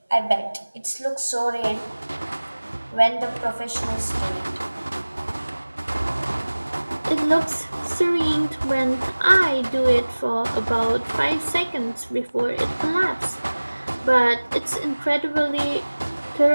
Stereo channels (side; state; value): both; inverted; correlation -1.00